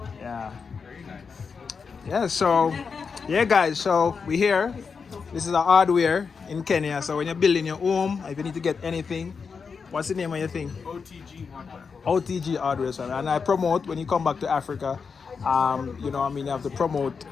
Yeah. Very nice. Yeah, so, yeah, guys, so we're here. This is a hardware in Kenya. So when you're building your home, if you need to get anything, what's the name of your thing? OTG hardware. OTG hardware. So, and I promote when you come back to Africa. You know, I mean, you have to promote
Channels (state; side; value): quieter; right; 5.5 dB